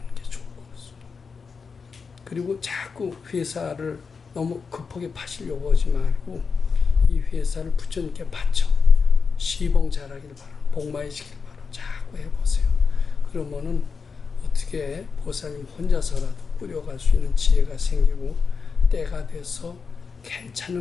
게 좋을 것 같습니다. 그리고 자꾸 회사를 너무 급하게 파시려고 하지 말고 이 회사를 부처님께 바쳐 시봉 잘하길 바라, 복마해지길 바라 자꾸 해보세요. 그러면은 어떻게 보살님 혼자서라도 꾸려갈 수 있는 지혜가 생기고 때가 돼서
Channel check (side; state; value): right; quieter; 5.3 dB